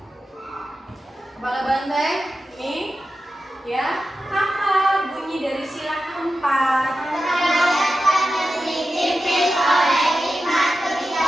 Kepala banteng ini ya, apa bunyi dari sila keempat? Dipimpin oleh hikmat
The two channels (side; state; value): both; normal; correlation 0.92